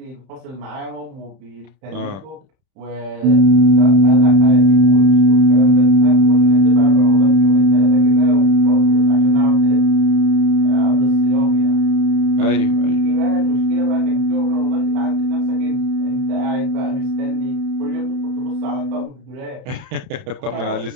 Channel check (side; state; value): left; late; 31 ms